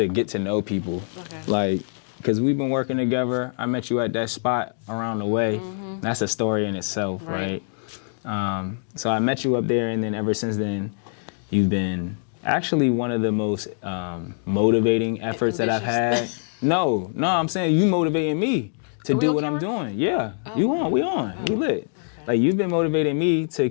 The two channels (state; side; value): silent; right; digital silence